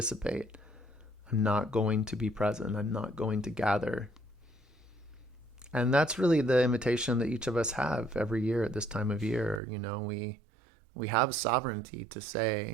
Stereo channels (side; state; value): left; drops out; at 9.6 s